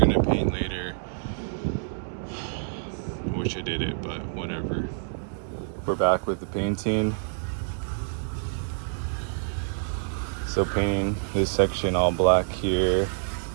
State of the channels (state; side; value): silent; left; digital silence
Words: paint later. I wish I did it, but whatever. We're back with the painting. So painting this section all black here,